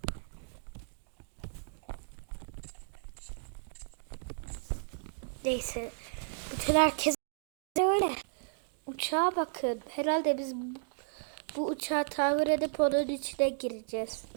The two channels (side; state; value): left; silent; digital silence